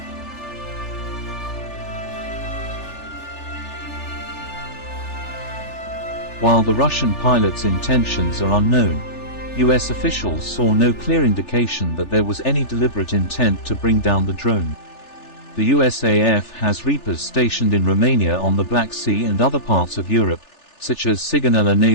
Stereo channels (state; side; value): late; right; 3.4 ms